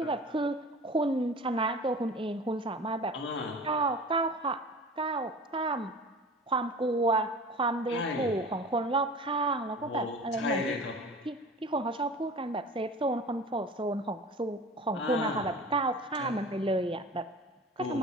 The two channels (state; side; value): normal; both; correlation 0.38